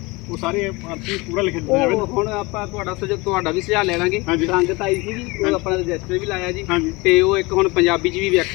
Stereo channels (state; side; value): quieter; right; 24.5 dB